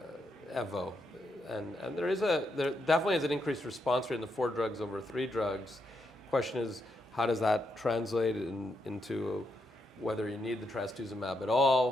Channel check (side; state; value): both; normal; correlation 0.81